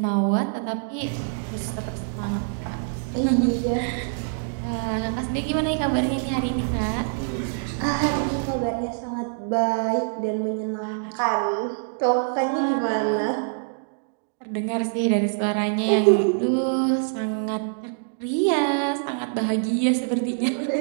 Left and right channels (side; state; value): left; silent; digital silence